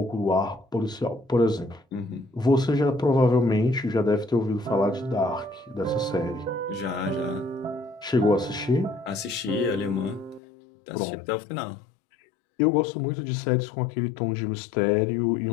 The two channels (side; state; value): right; drops out; at 10.4 s